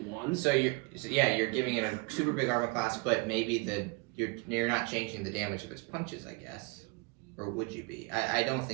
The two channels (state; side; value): quieter; left; 29.6 dB